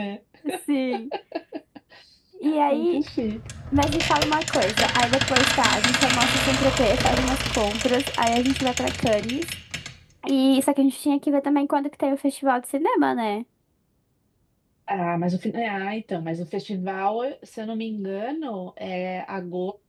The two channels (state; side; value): identical; both; correlation 1.00